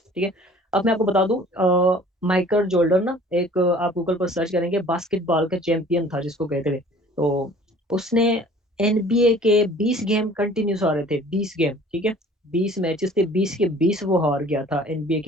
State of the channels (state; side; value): normal; both; correlation 0.50